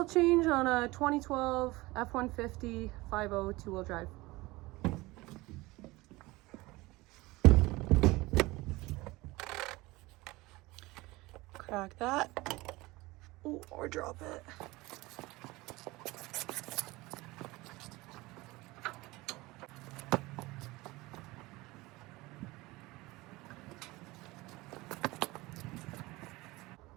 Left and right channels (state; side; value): quieter; left; 21.1 dB